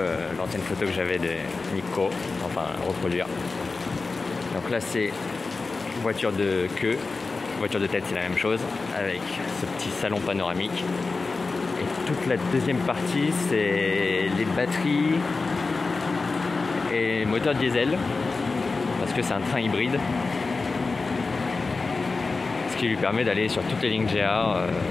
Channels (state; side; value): quieter; right; 4.0 dB